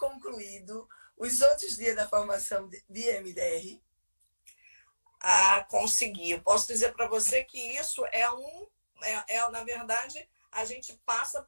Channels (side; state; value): both; inverted; correlation -1.00